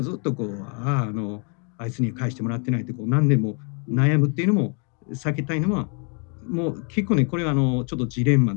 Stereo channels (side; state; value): right; quieter; 38.8 dB